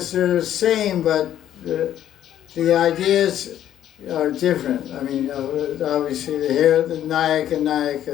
they're the same, but the ideas are different. I mean, obviously the Nayak and Nayaka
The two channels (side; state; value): right; quieter; 11.2 dB